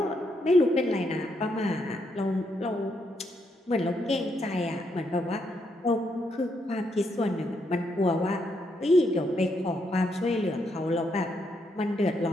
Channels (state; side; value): normal; both; correlation 0.78